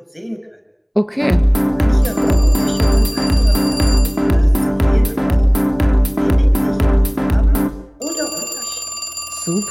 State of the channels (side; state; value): both; identical; correlation 1.00